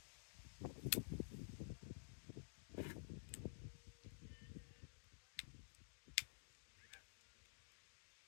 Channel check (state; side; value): silent; right; digital silence